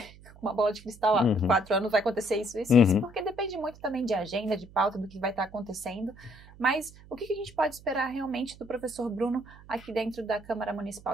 uma bola de cristal, 4 anos vai acontecer isso, porque depende muito também de agenda, de pauta, do que vai estar acontecendo. Mas o que a gente pode esperar realmente do professor Bruno aqui dentro da Câmara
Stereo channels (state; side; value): noise; right; hum, 21 dB below the sound